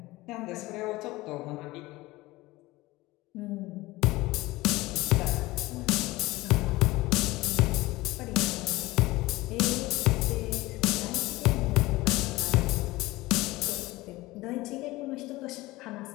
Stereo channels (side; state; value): right; quieter; 19.6 dB